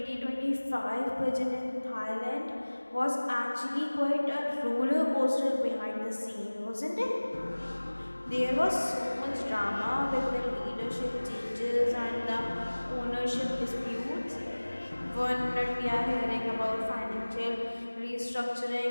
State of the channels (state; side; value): inverted; both; correlation -1.00